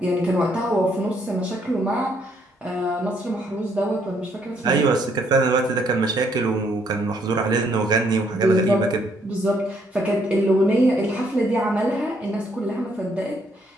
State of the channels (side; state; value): both; normal; correlation 0.70